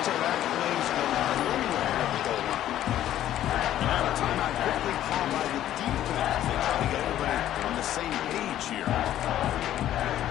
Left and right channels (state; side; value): quieter; right; 12.3 dB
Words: plays go nowhere at the goal line. And now a timeout quickly called by the defense. They try to get everybody on the same page here.